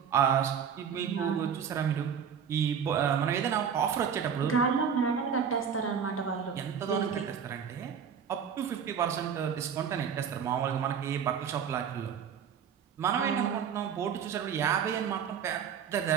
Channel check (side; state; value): left; quieter; 7.5 dB